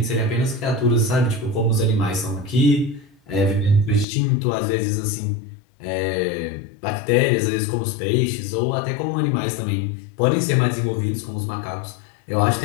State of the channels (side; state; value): right; drops out; at 4.0 s